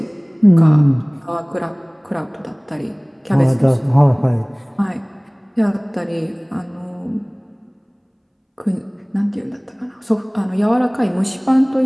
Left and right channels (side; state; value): both; identical; correlation 1.00